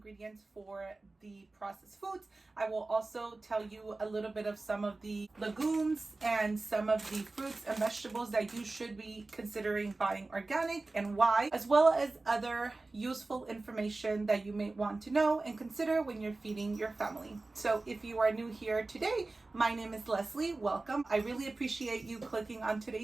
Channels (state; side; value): quieter; left; 3.3 dB